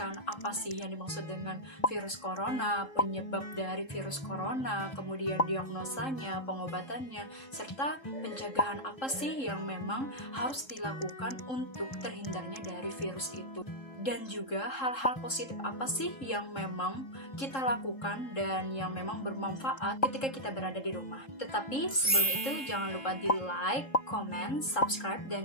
apa sih yang dimaksud dengan virus corona, penyebab dari virus corona, kemudian diagnosanya, pengobatannya, serta pencegahan apa sih yang memang harus dilakukan untuk terhindarnya dari virus itu. Dan juga hal-hal positif apa sih yang memang kita lakukan dan yang memang bermanfaat ketika kita berada di rumah. Tetapi sebelum itu jangan lupa di like, comment, subscribe,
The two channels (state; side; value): late; right; 3.7 ms